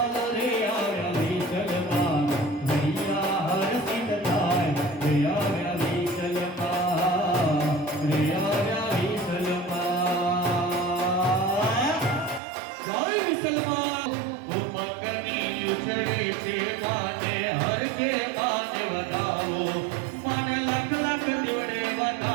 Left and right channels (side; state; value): left; drops out; at 12.4 s